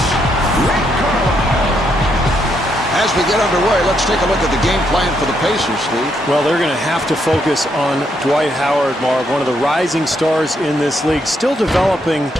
Rick Carlisle. As we get underway, let's take a look at the game plan for the Pacers, Steve. Well, they're going to have to focus on Dwight Howard, Marv, one of the rising stars in this league. Still developing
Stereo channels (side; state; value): both; normal; correlation 0.76